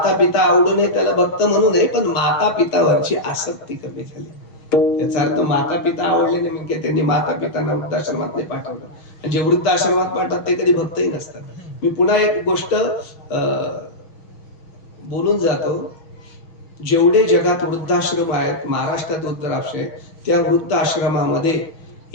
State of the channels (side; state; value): right; late; 6.2 ms